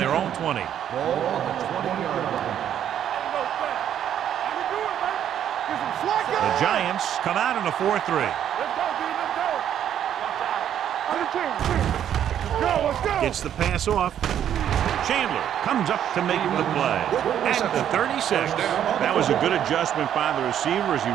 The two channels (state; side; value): quieter; left; 10.0 dB